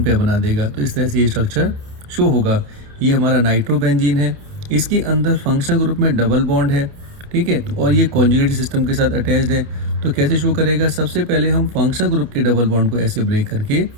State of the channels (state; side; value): late; left; 29 ms